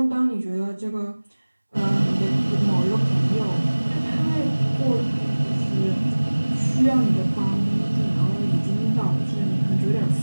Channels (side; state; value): both; inverted; correlation -1.00